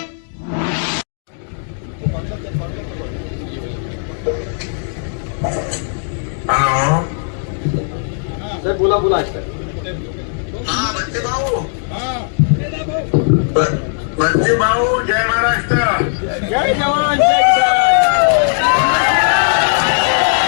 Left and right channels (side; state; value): right; silent; digital silence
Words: सर बोला बोला बच्चे भाऊ जय महाराष्ट्र। जय जवान जय किसान।